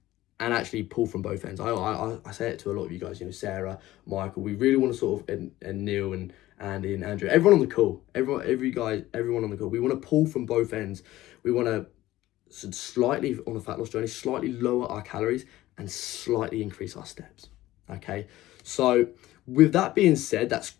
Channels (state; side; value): quieter; right; 16.1 dB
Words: and actually pull from both ends. I say it to a lot of you guys, you know, Sarah, Michael, we really want to sort of, and Neil and Andy and Andrew, everyone on the call, everyone on the call, we want to pull from both ends. We want to slightly, on a fat loss journey, slightly lower our calories and slightly increase our steps. Okay, so with that being said, that's